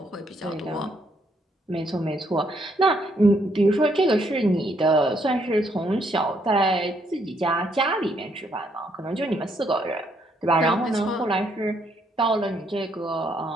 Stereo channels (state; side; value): normal; both; correlation 0.72